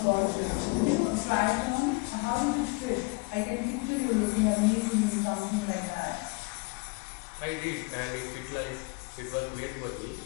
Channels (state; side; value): quieter; right; 29.0 dB